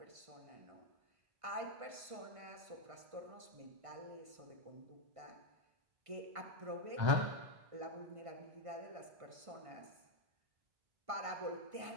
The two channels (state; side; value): late; left; 1.5 ms